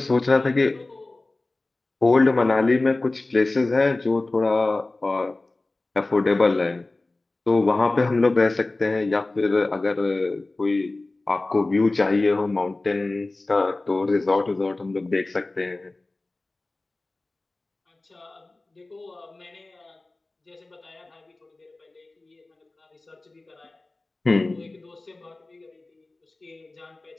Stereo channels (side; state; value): right; quieter; 3.1 dB